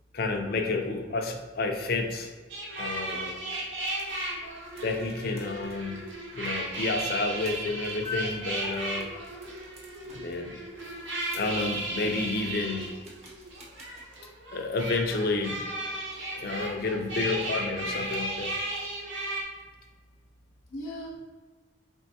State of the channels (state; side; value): normal; both; correlation 0.15